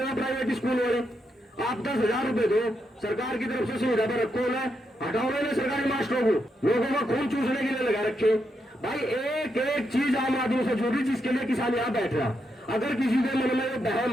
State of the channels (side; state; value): both; normal; correlation 0.82